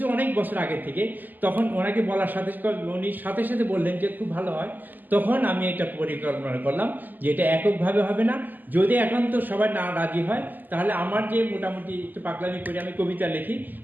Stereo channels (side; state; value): left; late; 0.086 ms